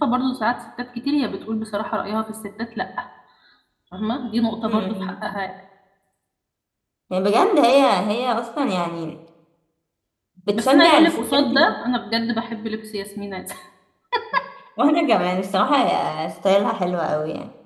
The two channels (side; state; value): both; identical; correlation 1.00